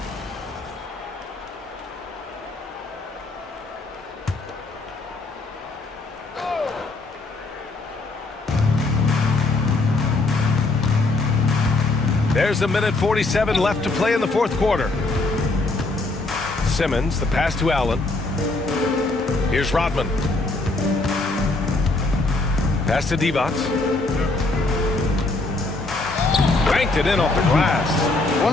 There's a minute 47 left to play in the fourth quarter. Simmons, the pass to Allen. Here's Rodman. Pass to Divac. Banked it in off the glass. One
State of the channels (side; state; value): right; quieter; 3.2 dB